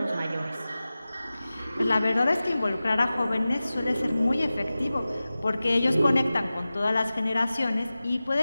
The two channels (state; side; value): inverted; both; correlation -0.96